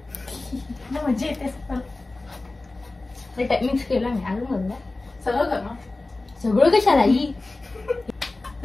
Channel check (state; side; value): quieter; right; 3.1 dB